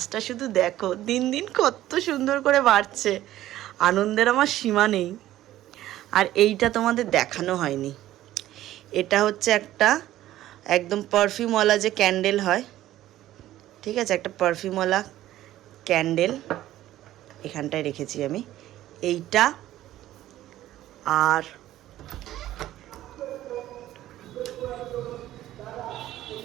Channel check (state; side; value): quieter; left; 14.1 dB